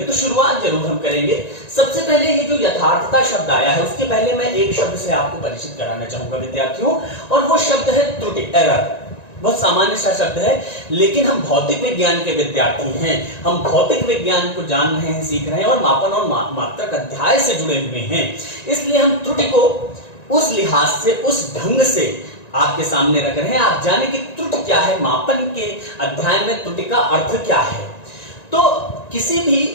तो शुरुआत जरूर हम करेंगे। सबसे पहले ये जो यथार्थता शब्द आया है, उसके पहले मैं एक शब्द से आपको परिचित कराना चाहूंगा विद्यार्थियों, और वो शब्द है त्रुटि, एरर। बहुत सामान्य सा शब्द है, लेकिन हम भौतिक विज्ञान के विद्यार्थी हैं, हम भौतिक विज्ञान को जान रहे हैं, सीख रहे हैं और मापन और मात्रक अध्याय से जुड़े हुए हैं, इसलिए हम त्रुटि को उस लिहाज से, उस ढंग से आपके सामने रख रहे हैं। आप जाने कि त्रुटि क्या है, मापन के अध्याय में त्रुटि का अर्थ क्या है। तो किसी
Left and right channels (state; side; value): late; right; 1.9 ms